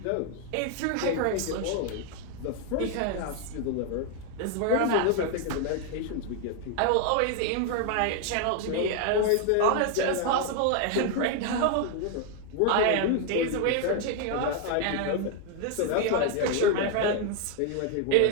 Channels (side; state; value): both; different; correlation 0.01